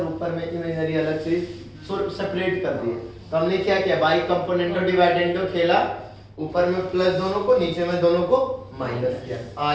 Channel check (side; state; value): both; identical; correlation 1.00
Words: ऊपर में इमेजनरी अलग चीज सेपरेट कर दिए। तो हमने क्या किया, बाई कंपोनेंटो डिवाइडेंडो खेला, ऊपर में प्लस दोनों को, नीचे में दोनों को माइनस किया, आ